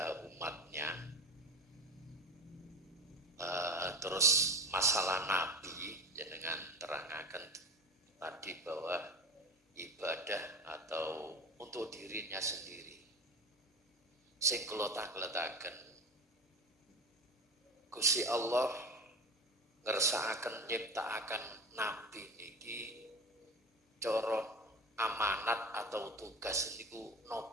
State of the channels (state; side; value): normal; both; correlation 0.32